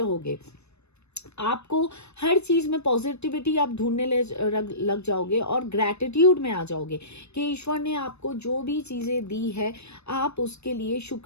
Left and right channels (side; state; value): right; late; 0.81 ms